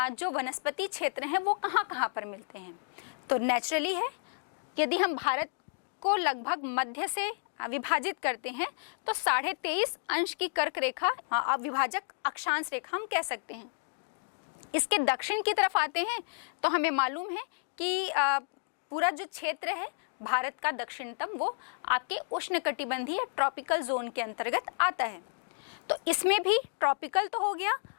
जो वनस्पति क्षेत्र हैं वो कहाँ कहाँ पर मिलते हैं। तो नेचुरली है, यदि हम भारत को लगभग मध्य से विभाजित करते हैं तो 23.5 अंश की कर्क रेखा विभाजक अक्षांश रेखा हम कह सकते हैं। इसके दक्षिण की तरफ आते हैं तो हमें मालूम है कि पूरा जो क्षेत्र है भारत का दक्षिणतम वो आपके उष्णकटिबंधीय ट्रॉपिकल जोन के अंतर्गत आता है। तो इसमें भी ट्रॉपिकल तो हो गया।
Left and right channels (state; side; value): silent; right; digital silence